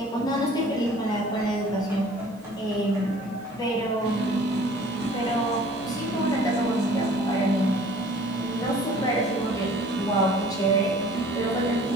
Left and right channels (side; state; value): both; normal; correlation 0.50